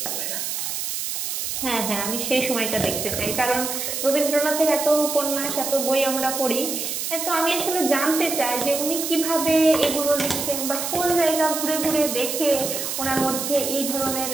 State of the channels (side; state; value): right; noise; hiss, 3 dB below the sound